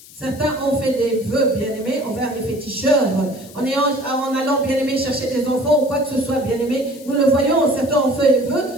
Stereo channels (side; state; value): left; noise; hiss, 20 dB below the sound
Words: Certains ont fait des vœux, bien-aimés, envers les féticheurs. En allant, bien-aimés, chercher des enfants ou quoi que ce soit, bien-aimés. Nous le voyons, certains ont fait des vœux